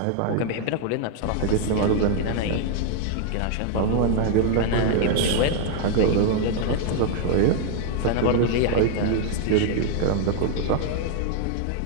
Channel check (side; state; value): both; different; correlation 0.00